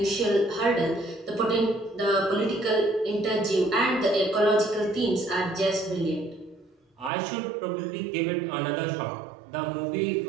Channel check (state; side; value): drops out; left; at 7.1 s